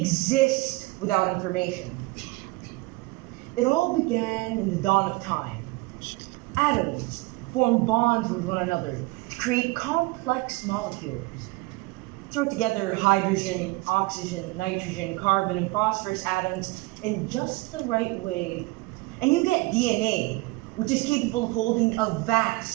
without information. It all began in the dawn of time. Atoms formed bonds with one another to create complex molecules. Throw together hydrogen, oxygen, nitrogen, carbon, and phosphorus atoms in just the right way, and you get DNA, which is capable of holding a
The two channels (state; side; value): quieter; left; 22.9 dB